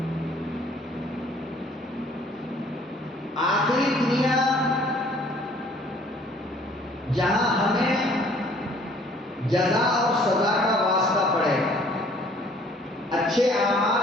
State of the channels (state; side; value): normal; both; correlation 0.57